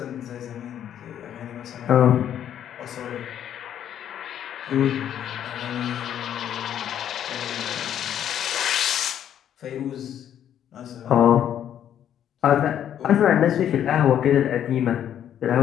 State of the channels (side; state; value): right; quieter; 10.1 dB